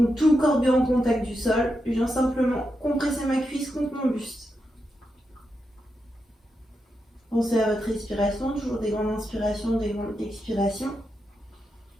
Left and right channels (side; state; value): both; normal; correlation 0.86